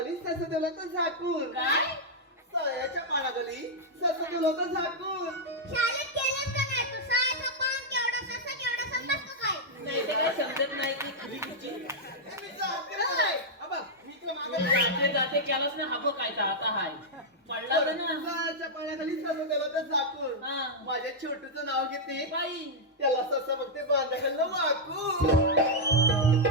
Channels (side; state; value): both; normal; correlation -0.05